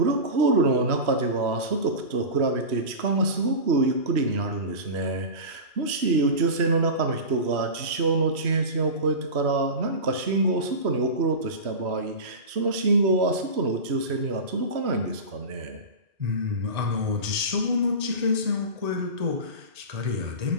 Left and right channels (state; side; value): late; left; 3.0 ms